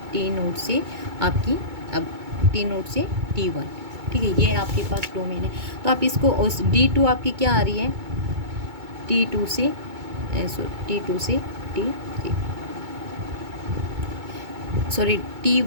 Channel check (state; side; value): late; left; 2.2 ms